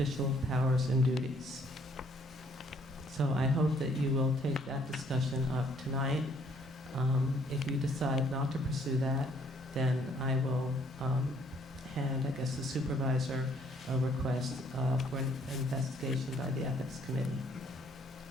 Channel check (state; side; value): normal; both; correlation 0.64